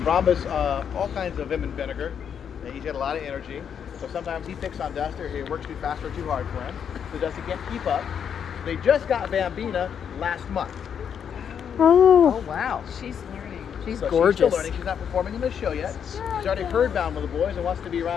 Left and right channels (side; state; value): right; quieter; 7.9 dB